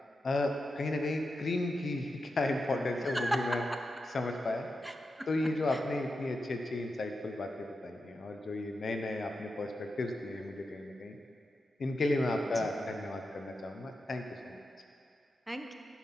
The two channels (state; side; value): normal; both; correlation 0.89